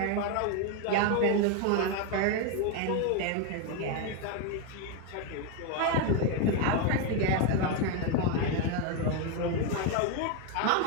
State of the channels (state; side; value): different; both; correlation 0.01